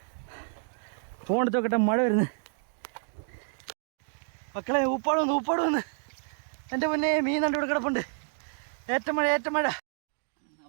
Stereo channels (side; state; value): left; silent; digital silence